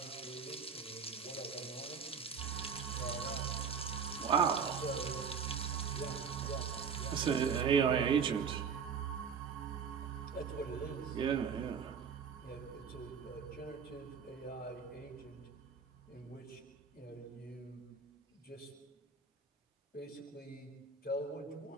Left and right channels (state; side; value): quieter; left; 6.2 dB